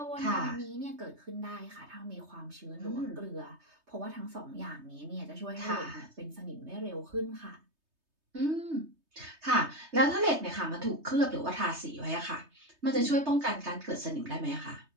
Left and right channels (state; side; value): late; left; 3.2 ms